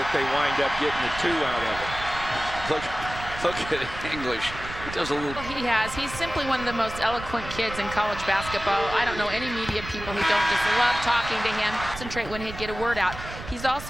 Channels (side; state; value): right; noise; rumble, 11 dB below the sound